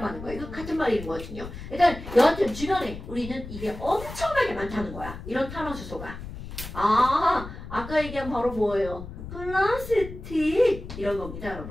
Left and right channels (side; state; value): left; noise; rumble, 11 dB below the sound